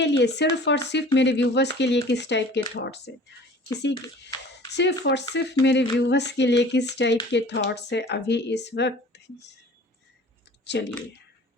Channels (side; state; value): both; normal; correlation 0.46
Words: लिए, सिर्फ़ और सिर्फ मेरे व्यूवर्स के लिए किस टाइप के थॉट्स है, किसी की सिर्फ़ और सिर्फ मेरे व्यूवर्स के लिए किस टाइप के थॉट्स है अभी इस वक्त। चलिए,